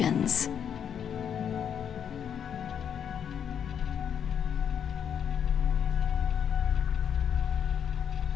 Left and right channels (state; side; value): quieter; right; 8.3 dB